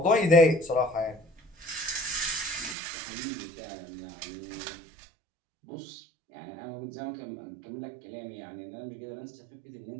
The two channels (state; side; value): drops out; left; at 2.8 s